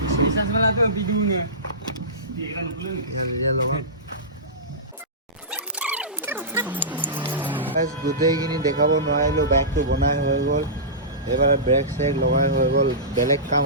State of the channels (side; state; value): both; normal; correlation -0.20